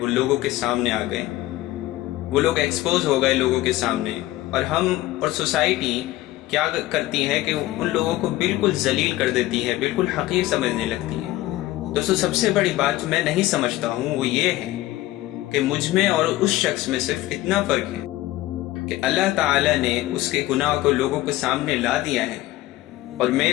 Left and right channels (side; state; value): right; quieter; 16.7 dB